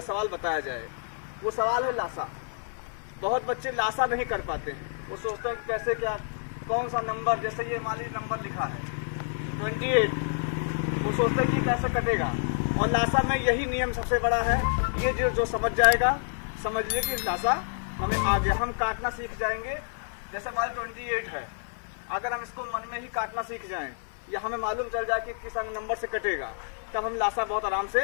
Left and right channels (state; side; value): silent; right; 59 dB below the other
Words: सवाल बताया जाए, वो सवाल है लासा। बहुत बच्चे लासा नहीं कर पाते हैं। वो सोचते हैं कि कैसे, क्या, कौन सा नंबर, जैसे ये मान लीजिए नंबर लिखा है 28, वो सोचते हैं कि कैसे कटेगा। और लासा में यही नियम सबसे बड़ा है। ये जो समझ जाएगा, समझ लीजिए कि लासा हमें आ गया। हम काटना सीख जाएंगे। जैसे मान 28 है, अगर हम इसको मन में ही काटना सीख जाएं या हमें मालूम चल जाए कि किस नंबर से कटेगा, तब हम लासा बहुत आराम से